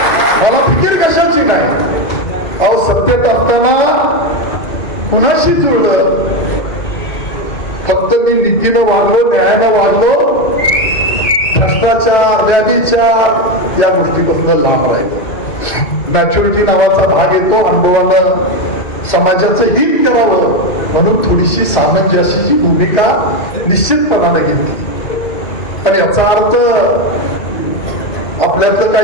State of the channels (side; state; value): right; late; 2.6 ms